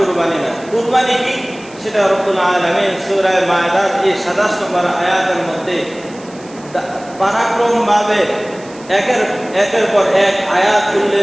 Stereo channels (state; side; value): noise; right; hiss, 23 dB below the sound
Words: না। কুরবানি কি সেটা রব্বুল আলামিন সূরা মায়দার এই 27 নম্বর আয়াতের মধ্যে পরাক্রমভাবে একের পর এক আয়াত